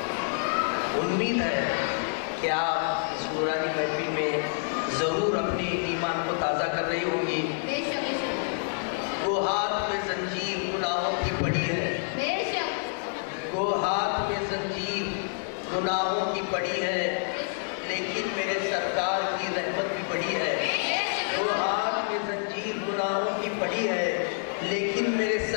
امید ہے کہ آپ اس نورانی محفل میں ضرور اپنے ایمان کو تازہ کر رہی ہوں گی۔ بے شک وہ ہاتھ میں زنجیر گناہوں کی پڑی ہے، بے شک وہ ہاتھ میں زنجیر گناہوں کی پڑی ہے، لیکن میرے سرکار کی رحمت بھی پڑی ہے۔ وہ ہاتھ میں زنجیر گناہوں کی پڑی ہے، لیکن میرے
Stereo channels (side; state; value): right; silent; 59 dB below the other